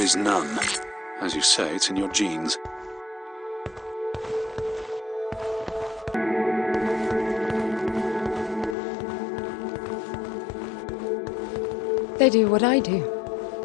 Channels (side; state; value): right; drops out; at 8.8 s